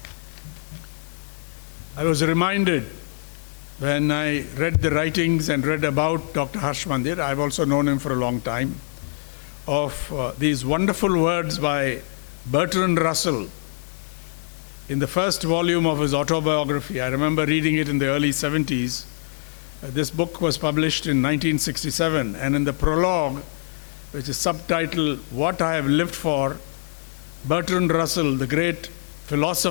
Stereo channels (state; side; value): silent; right; digital silence